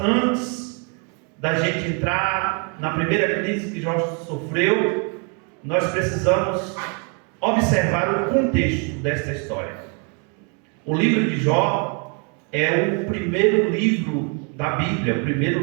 da gente entrar na primeira crise que Jó sofreu, nós precisamos observar o contexto desta história. O livro de Jó é o primeiro livro da Bíblia, o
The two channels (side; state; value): left; quieter; 37.2 dB